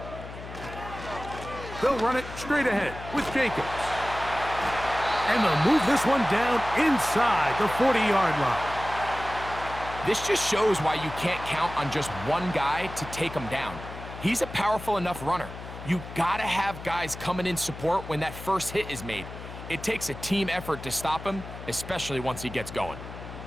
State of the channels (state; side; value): noise; left; hum, 12 dB below the sound